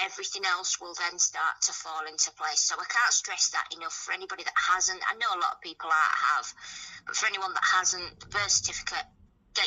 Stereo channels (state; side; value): identical; both; correlation 1.00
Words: else will then start to fall into place. So I can't stress that enough for anybody that hasn't. I know a lot of people have, but for anyone that hasn't, the birth certificate,